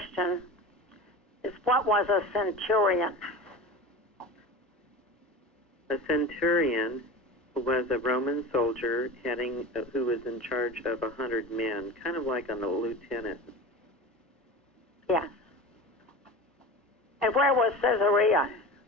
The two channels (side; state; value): both; normal; correlation 0.31